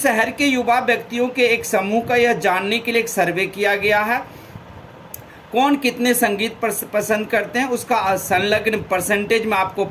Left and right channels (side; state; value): both; identical; correlation 1.00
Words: के युवा व्यक्तियों के एक समूह का यह जानने के लिए एक सर्वे किया गया है, कौन कितने संगीत पसंद करते हैं, उसका संलग्न परसेंटेज में आपको